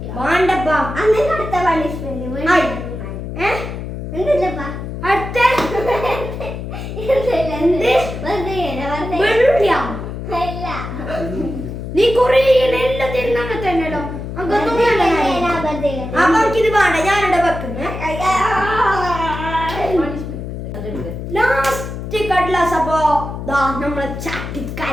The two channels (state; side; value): noise; left; hum, 7 dB below the sound